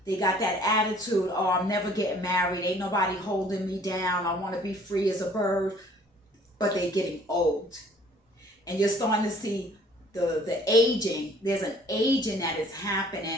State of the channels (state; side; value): normal; both; correlation 0.56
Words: they got that attitude, oh, I'm never getting married, ain't nobody holding me down, I want to be free as a bird. But they're getting old. And you're starting to see the aging. There's an aging that is